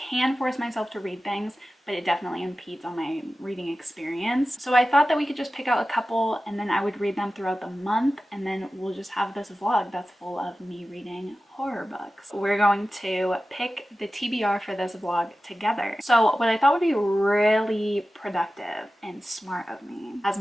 force myself to read things, but it definitely impedes on my reading experience. So I thought that we could just pick out a couple and then I would read them throughout the month, and then we'll just have this vlog that's full of me reading horror books. We're going to pick the TBR for this vlog together. So what I thought would be really productive and smart of me, as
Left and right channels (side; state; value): both; normal; correlation 0.95